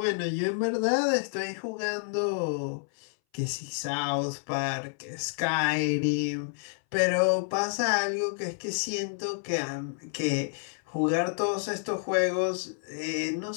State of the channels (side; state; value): right; silent; 58 dB below the other